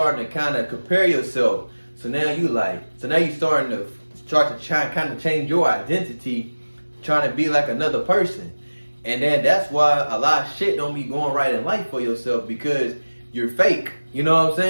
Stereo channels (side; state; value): both; inverted; correlation -1.00